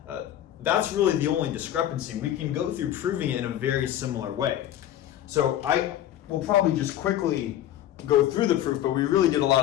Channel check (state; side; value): quieter; right; 12.0 dB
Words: that's really the only discrepancy. We can go through proving it in a very similar way. So I will probably just quickly go through the proof, but we really did a lot